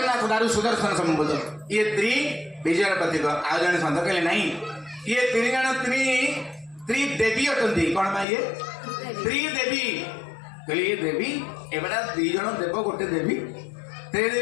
दारू सुदर्शन संबोध ये त्रि विजय प्रतीक आज जन संत कहले नहीं ये तीन जन त्रिदेवी अटंती कौन भाई ये त्रिदेवी कहले ये देवी एबड़ा दी जन देव गोटे देवी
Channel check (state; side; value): drops out; right; at 8.2 s